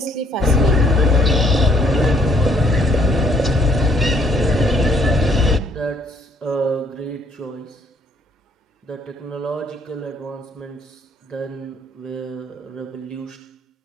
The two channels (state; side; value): normal; both; correlation 0.66